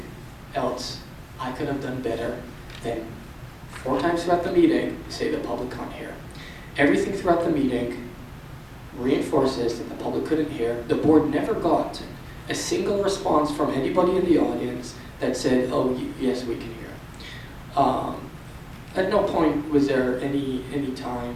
else I could have done better than 4 times throughout the meeting say the public can't hear. Everything throughout the meeting reinforces that the public couldn't hear. The board never got a single response from anybody in the audience that said, oh, yes, we can hear. At no point was there any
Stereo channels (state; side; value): identical; both; correlation 1.00